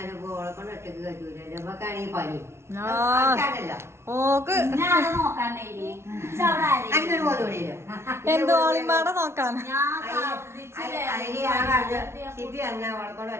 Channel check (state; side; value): late; left; 0.13 ms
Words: ഓളെ കൊണ്ട് ഒറ്റക്ക് കഴിയൂല. നമുക്കാണെങ്കിൽ പനി ഓക്ക് അങ്ങനെ പോലും എന്തോ ഓളിമ്പാടെ നോക്കാൻ അതിന് ഞാൻ പറഞ്ഞു ഷിപ്പി എന്നാ ഓളെ കൊണ്ട്